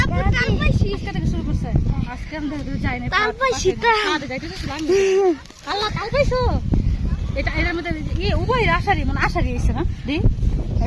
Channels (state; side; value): identical; both; correlation 1.00